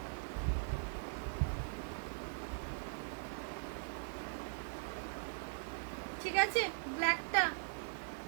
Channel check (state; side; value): silent; left; digital silence